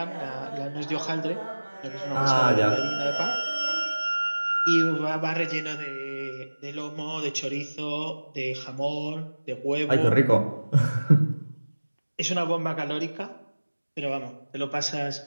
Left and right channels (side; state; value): both; inverted; correlation -1.00